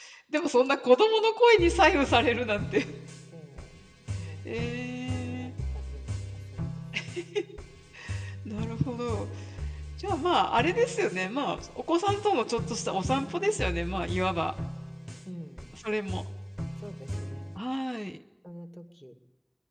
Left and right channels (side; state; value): both; identical; correlation 1.00